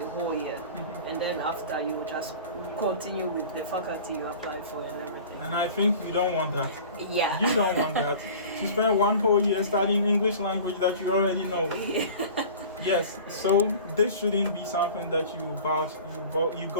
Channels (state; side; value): inverted; both; correlation -0.41